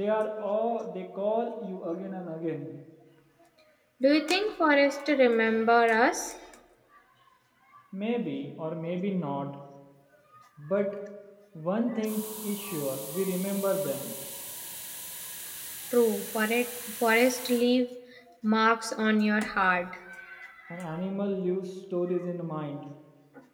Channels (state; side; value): identical; both; correlation 1.00